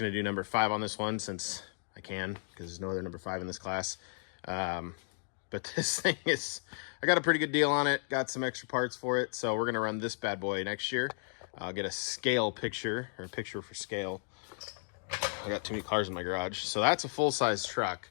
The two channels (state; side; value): silent; right; digital silence